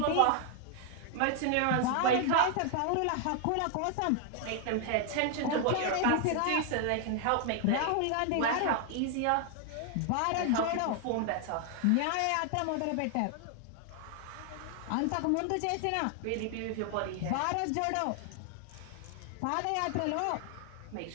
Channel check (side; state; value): both; different; correlation 0.00